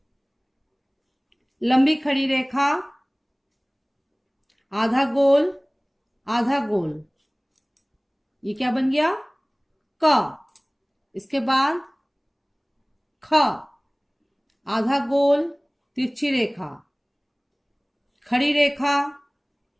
लंबी खड़ी रेखा, आधा गोल, आधा गोल, ये क्या बन गया? क। इसके बाद ख, आधा गोल, तिरछी रेखा, खड़ी रेखा,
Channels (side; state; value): both; identical; correlation 1.00